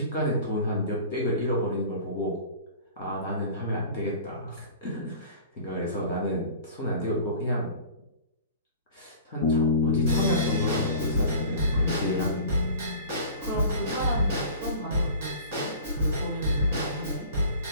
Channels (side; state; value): both; inverted; correlation -0.42